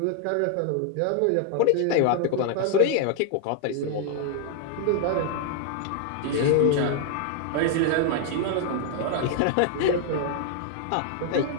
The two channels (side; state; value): both; different; correlation 0.00